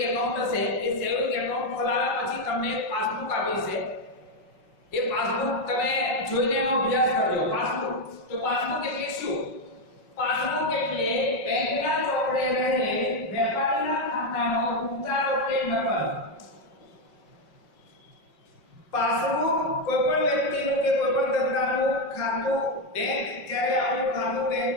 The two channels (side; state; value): right; late; 5.4 ms